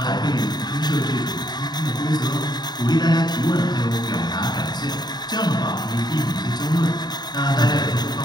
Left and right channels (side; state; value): right; late; 0.20 ms